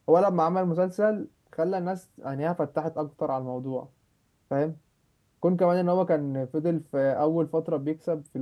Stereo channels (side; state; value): both; identical; correlation 1.00